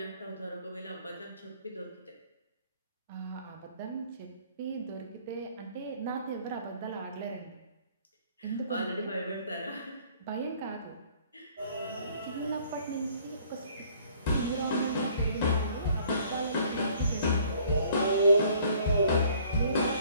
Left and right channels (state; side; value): inverted; both; correlation -0.57